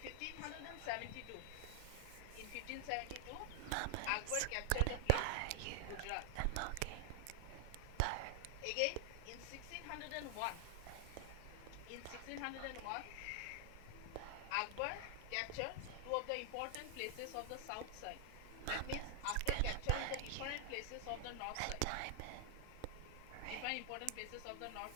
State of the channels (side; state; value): both; different; correlation 0.00